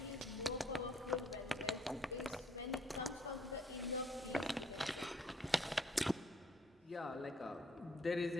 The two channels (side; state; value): both; normal; correlation 0.65